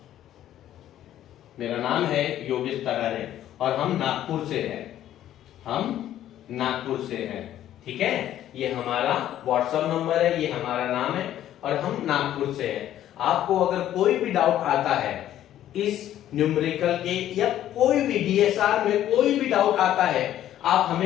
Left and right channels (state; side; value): quieter; right; 12.1 dB